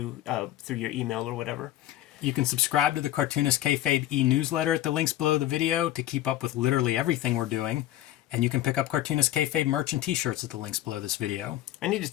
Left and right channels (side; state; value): right; quieter; 14.1 dB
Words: through your email or whatever. You can subscribe to the Cartoonist Kayfabe e-newsletter at the links below the video to keep up with literally everything we're doing. And you can pick up Cartoonist Kayfabe merch and t-shirts at the links below this video. I need to